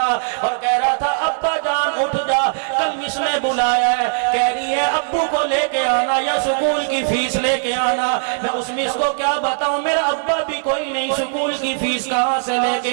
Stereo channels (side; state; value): left; silent; 66 dB below the other